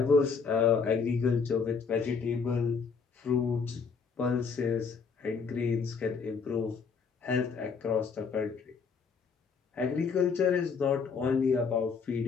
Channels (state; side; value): quieter; right; 5.5 dB